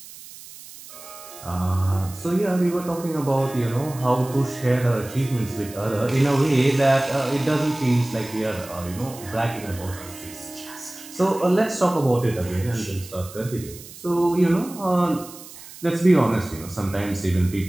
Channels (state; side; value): noise; right; hiss, 17 dB below the sound